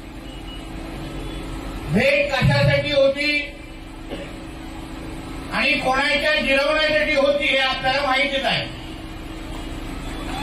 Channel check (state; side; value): identical; both; correlation 1.00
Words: भेट कशासाठी होती आणि कोणाच्या जिरवण्यासाठी होती हे आपल्याला माहितीच आहे।